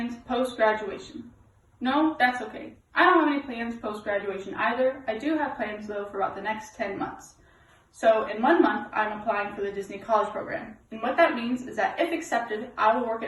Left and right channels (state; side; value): identical; both; correlation 1.00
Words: post-graduation. No, that's okay. I don't have any plans post-graduation either. I do have plans though for about the next 10 months. So in 1 month, I'm applying for the Disney College Program. And what that means is that if accepted, I will work